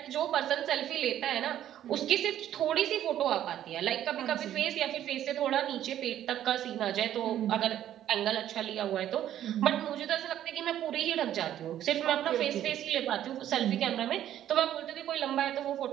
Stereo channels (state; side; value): quieter; left; 11.6 dB